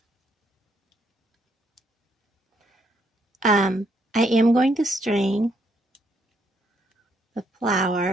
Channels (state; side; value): normal; both; correlation 0.73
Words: I am going to string the